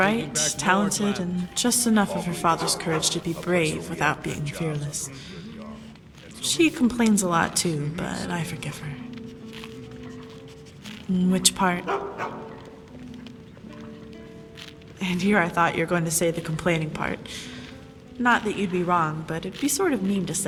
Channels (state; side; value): identical; both; correlation 1.00